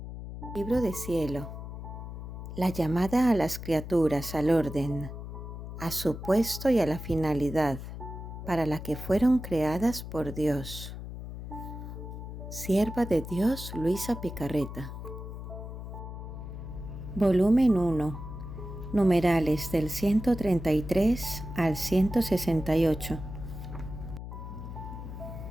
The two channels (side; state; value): left; noise; hum, 9 dB below the sound